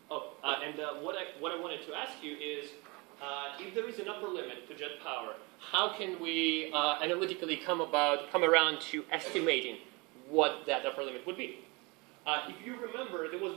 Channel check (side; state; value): left; quieter; 27.3 dB